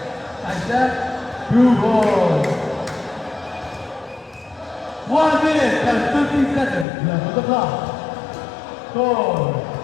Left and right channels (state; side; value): drops out; right; at 6.9 s